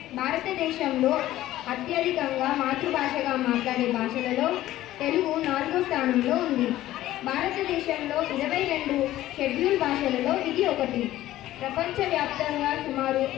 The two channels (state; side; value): quieter; right; 14.6 dB